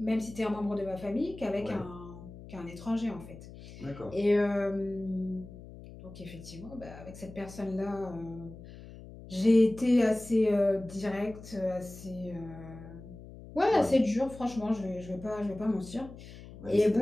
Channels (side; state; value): left; noise; hum, 16 dB below the sound